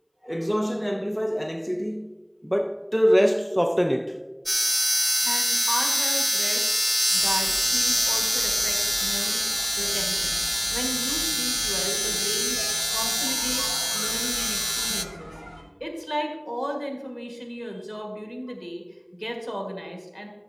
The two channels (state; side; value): identical; both; correlation 1.00